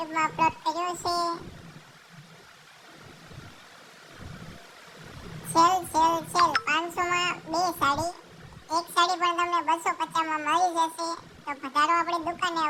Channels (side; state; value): both; identical; correlation 1.00